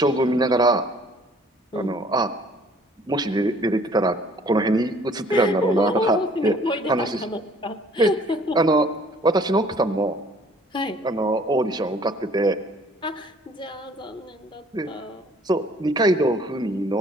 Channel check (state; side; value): normal; both; correlation 0.56